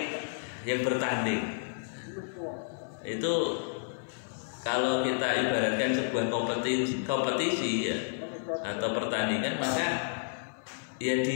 yang bertanding. Itu kalau kita ibaratkan sebuah kompetisi ya, atau pertandingan, maka ya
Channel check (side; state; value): right; silent; 57 dB below the other